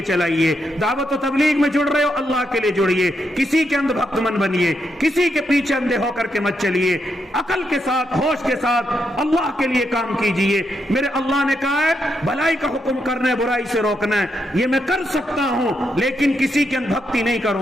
چلائیے، دعوت و تبلیغ میں جڑ رہے ہو اللہ کے لیے جڑیے، کسی کے اندھ بھکت من بنیے، کسی کے پیچھے اندھے ہو کر کے مت چلیے، عقل کے ساتھ ہوش کے ساتھ اللہ کے لیے کام کیجئے۔ میرے اللہ نے کہا ہے بھلائی کا حکم کرنا ہے، برائی سے روکنا ہے، یہ میں کر سکتا ہوں، لیکن کسی کے اندھ بھکتی نہیں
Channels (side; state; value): both; normal; correlation 0.81